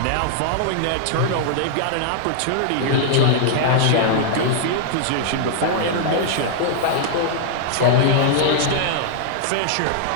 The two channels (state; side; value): different; both; correlation -0.01